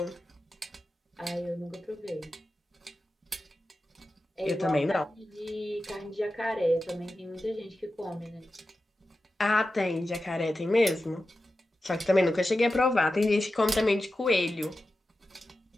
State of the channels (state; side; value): normal; both; correlation 0.92